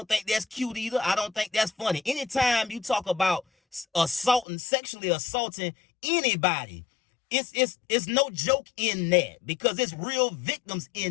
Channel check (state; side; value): drops out; right; at 4.5 s